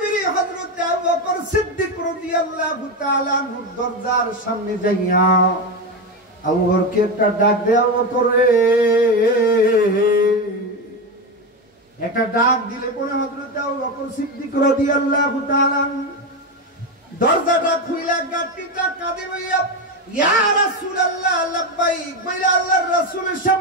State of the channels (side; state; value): both; normal; correlation 0.14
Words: হযরত আবু বকর সিদ্দিক রাদিয়াল্লাহু তাআলা আনহু দরজার সামনে যাইয়া আবু বকরকে একটা ডাক দেয়া, আবু বকর রে, একটা ডাক দিলে পরে হযরত আবু বকর সিদ্দিক রাদিয়াল্লাহু তাআলা দরজাটা খুইলা গাটিটা কাঁদে বইয়া ইয়া রাসূলুল্লাহ লাব্বাইক বইলা আল্লাহর রাসূলের